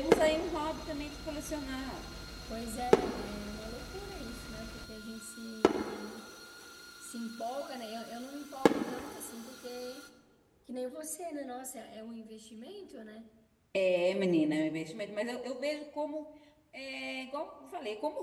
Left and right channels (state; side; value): identical; both; correlation 1.00